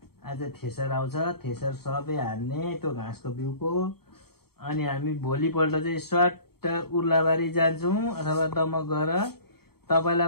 आज थ्रेसर आउँछ। थ्रेसर सबै हान्ने त्यो घाँसको बिउको। अनि हामी भोलिपल्ट चाहिँ स्वाट उर्लाबारी जान्छौँ अथवा दमक गएर। तपाईलाई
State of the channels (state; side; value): late; right; 0.95 ms